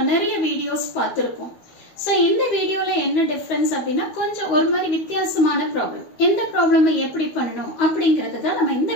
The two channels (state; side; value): late; right; 12 ms